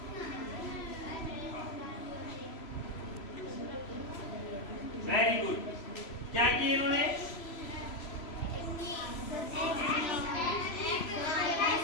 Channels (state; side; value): late; right; 3.0 ms